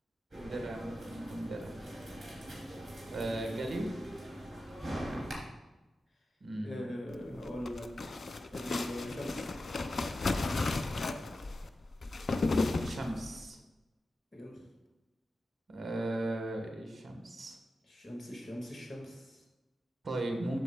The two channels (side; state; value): both; normal; correlation 0.92